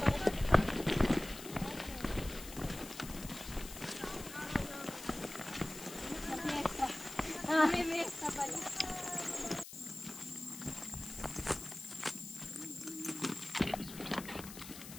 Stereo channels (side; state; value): left; noise; hiss, 13 dB below the sound